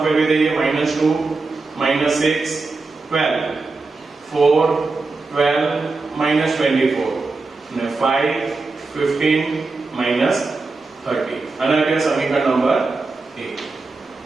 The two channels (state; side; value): quieter; left; 3.8 dB